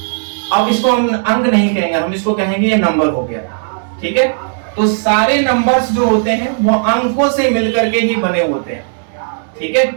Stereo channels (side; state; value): left; silent; digital silence